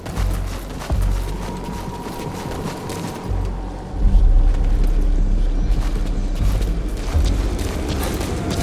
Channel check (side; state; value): both; identical; correlation 1.00